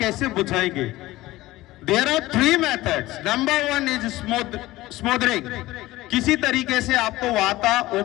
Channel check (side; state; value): right; quieter; 17.7 dB